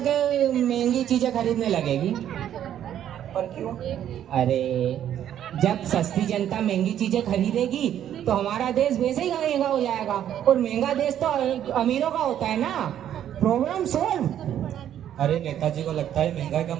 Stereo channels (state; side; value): quieter; left; 10.6 dB